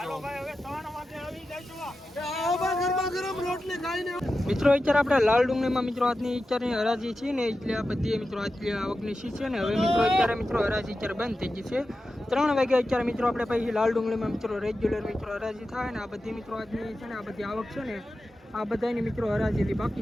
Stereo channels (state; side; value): normal; both; correlation 0.92